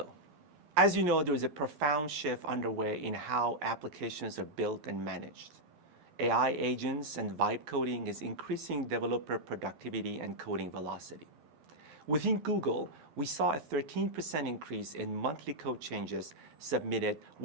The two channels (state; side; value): late; left; 12 ms